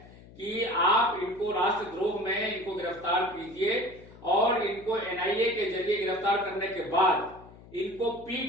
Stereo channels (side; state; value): left; noise; hum, 21 dB below the sound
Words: कि आप इनको राष्ट्रद्रोह में इनको गिरफ्तार कीजिए और इनको एनआईए के जरिए गिरफ्तार करने के बाद इनको